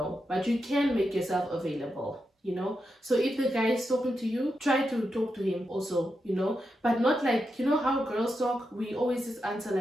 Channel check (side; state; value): both; normal; correlation 0.87